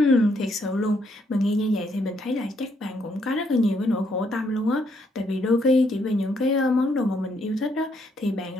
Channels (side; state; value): both; normal; correlation 0.73